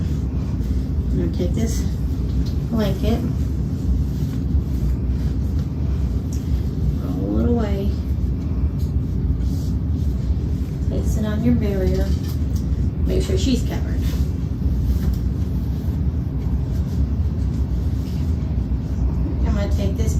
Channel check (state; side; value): identical; both; correlation 1.00